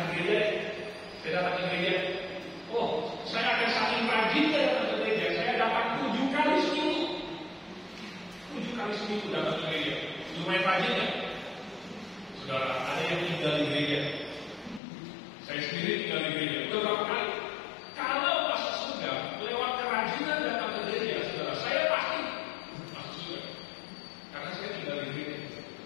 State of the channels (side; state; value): right; drops out; at 14.8 s